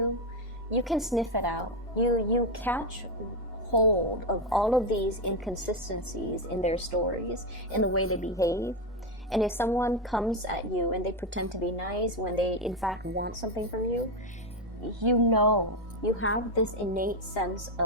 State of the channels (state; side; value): normal; both; correlation 0.09